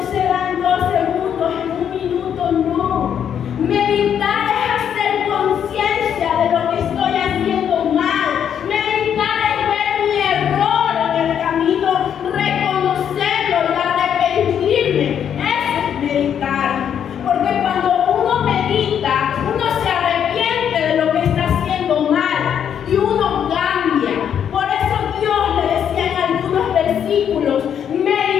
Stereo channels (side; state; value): right; quieter; 8.7 dB